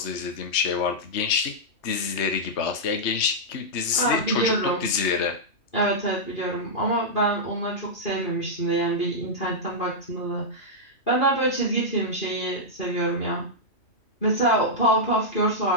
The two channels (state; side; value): late; right; 3.2 ms